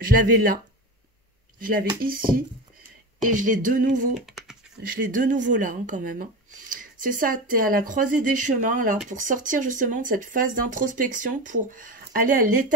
je l'avais là. Je l'avais ici. Et je l'ai de nouveau. Je l'ai de nouveau là, hein, quand même. Hein. C'est ça, tu es à la croisée des chemins, là, pour sortir justement de cette phase d'introspection, pour aller à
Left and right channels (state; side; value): normal; both; correlation 0.24